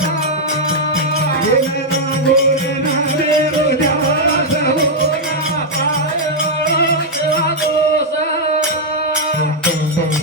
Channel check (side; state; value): both; normal; correlation -0.03